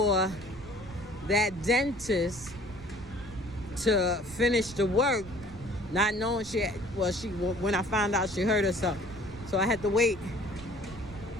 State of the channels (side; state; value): right; noise; rumble, 16 dB below the sound